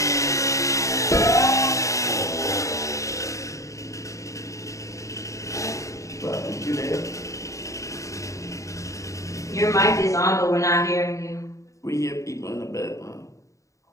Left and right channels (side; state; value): right; late; 0.15 ms